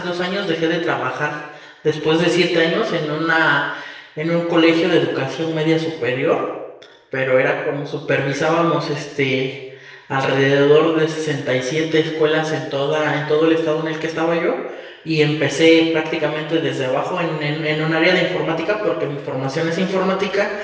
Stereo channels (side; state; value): both; identical; correlation 1.00